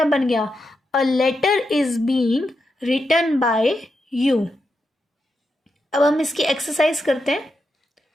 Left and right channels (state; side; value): normal; both; correlation 0.86